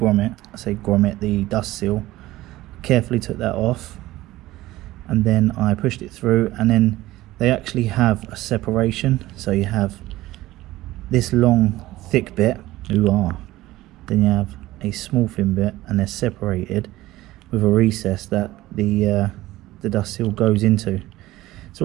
I say grommet, the dust seal. Carefully took that off, and then I pushed it through, and then they actually have a separation. So you have this long thick bit, then you have a small thin bit, and they're separated with a recess that the dust seal goes into.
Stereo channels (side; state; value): left; quieter; 16.9 dB